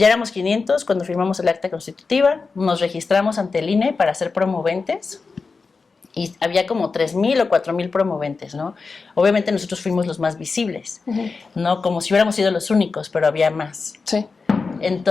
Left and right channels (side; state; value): right; quieter; 4.5 dB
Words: éramos 500 cuando firmamos el acta constitutiva, nos registramos ante el INE para ser promoventes y había como 3,000 o 4,000 promoventes, ¿no? Obviamente nosotros fuimos los más visibles, ¿no? Como si hubiéramos sido los únicos, pero había más. Sí.